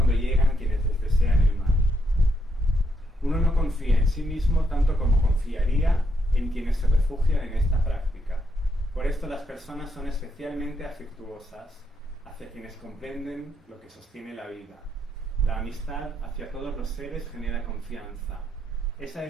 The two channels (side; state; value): both; normal; correlation 0.78